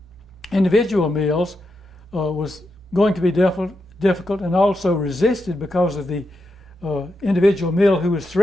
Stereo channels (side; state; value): both; normal; correlation 0.85